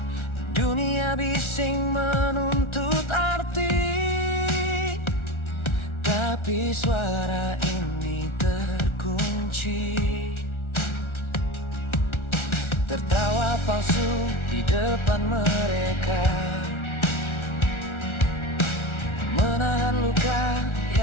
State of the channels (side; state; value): right; late; 1.4 ms